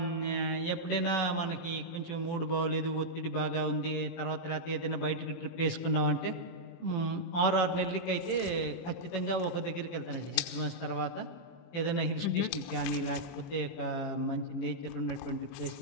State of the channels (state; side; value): late; right; 18 ms